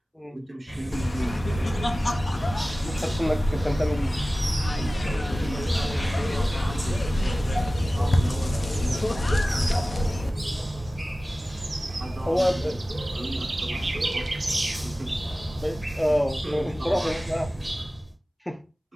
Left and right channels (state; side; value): normal; both; correlation 0.96